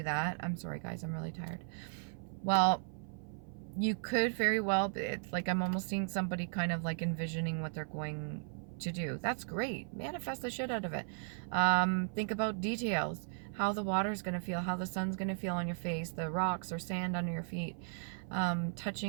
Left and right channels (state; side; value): silent; left; 54 dB below the other